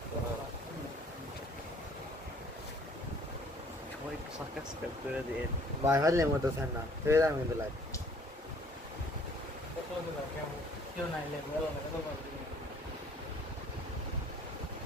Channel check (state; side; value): normal; both; correlation 0.57